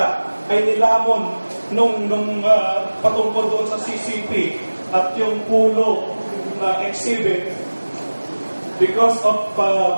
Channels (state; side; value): inverted; both; correlation -1.00